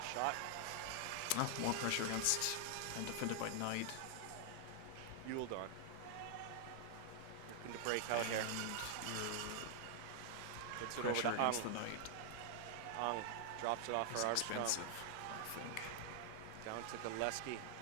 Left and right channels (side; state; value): both; different; correlation 0.00